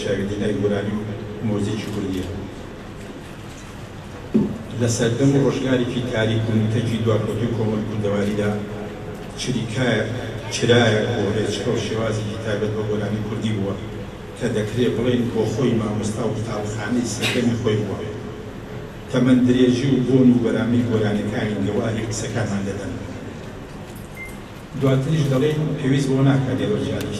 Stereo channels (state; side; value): identical; both; correlation 1.00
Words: چاویدینای گۆرانی و مۆزیکی کوردیە. لە سەردەم و ڕۆژگارێکی تاریک و نوتەکی دواکەوتوی کۆمەڵ کوردەواریدا چرایە بۆ ڕێچکە و شێوازێکی تایبەت بە گۆرانی کوردی بووە کە دەکرێت بڵێن بۆ خۆی مامۆستا و قوتابخانەی سەردەمی خۆی بووە. تەمەن درێژی و بۆن و بەرامی گۆرانەکانی گەواری قسەکانمان دەدەن. دواتریش دەڵێن پێویست بۆ ناکات لێرە